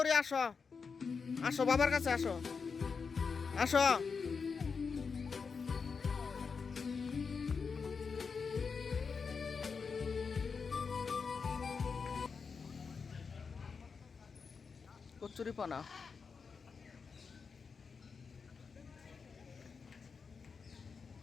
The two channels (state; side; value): quieter; right; 5.4 dB